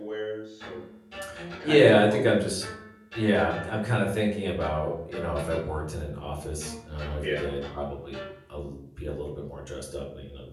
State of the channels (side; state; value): both; identical; correlation 1.00